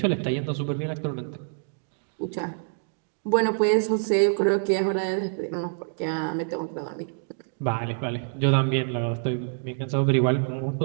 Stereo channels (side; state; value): left; silent; digital silence